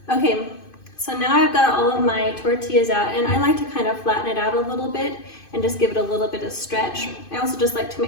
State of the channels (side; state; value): right; late; 2.5 ms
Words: Okay, So now I've got all of my tortillas out, and I like to kind of flatten it out a little bit and just give it a little bit of stretch. I also just like to